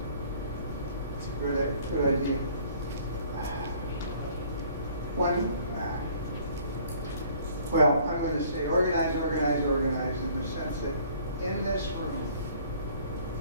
It's a good idea. Well, I'm going to say organize in the sense that in this room,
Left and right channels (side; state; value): both; inverted; correlation -0.56